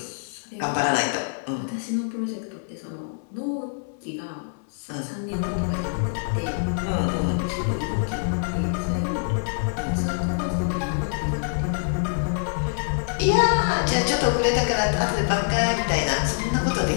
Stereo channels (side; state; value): right; silent; digital silence